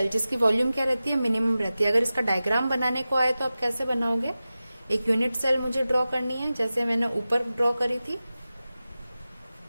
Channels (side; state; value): both; inverted; correlation -0.95